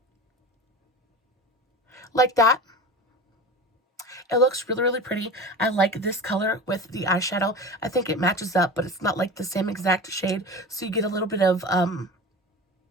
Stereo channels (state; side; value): normal; both; correlation 0.31